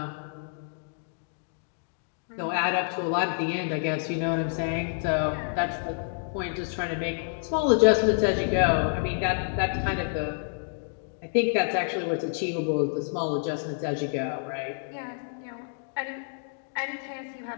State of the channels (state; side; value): silent; right; digital silence